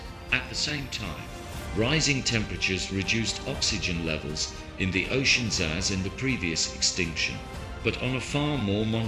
At the same time, rising temperatures reduced oxygen levels in the oceans as in the previous extinction, but on a far more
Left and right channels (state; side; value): identical; both; correlation 1.00